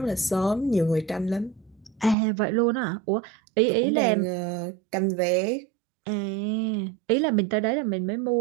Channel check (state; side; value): drops out; left; at 2.1 s